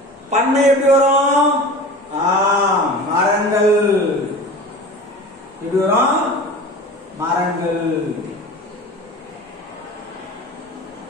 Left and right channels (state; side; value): normal; both; correlation 0.36